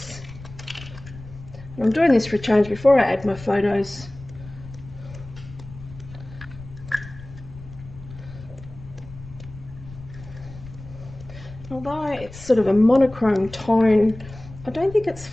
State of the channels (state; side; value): noise; left; rumble, 16 dB below the sound